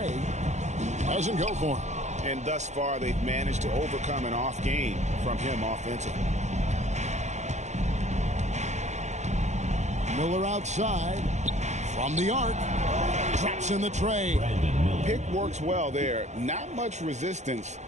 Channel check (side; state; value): left; late; 0.33 ms